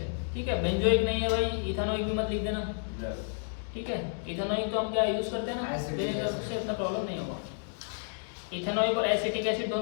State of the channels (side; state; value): right; silent; digital silence